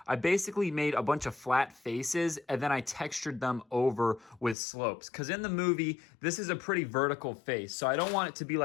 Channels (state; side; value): drops out; right; at 4.5 s